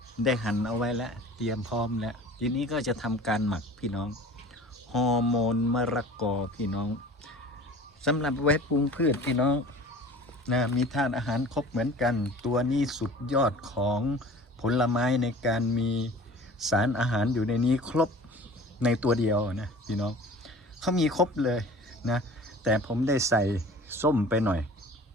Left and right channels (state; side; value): normal; both; correlation 0.43